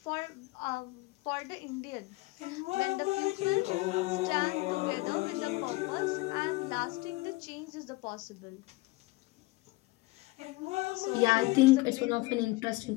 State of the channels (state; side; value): quieter; right; 21.4 dB